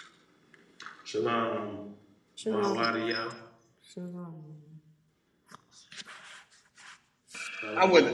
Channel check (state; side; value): identical; both; correlation 1.00